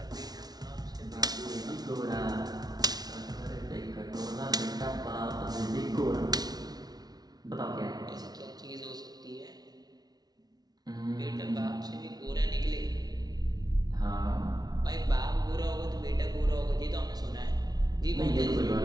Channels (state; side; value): late; left; 0.19 ms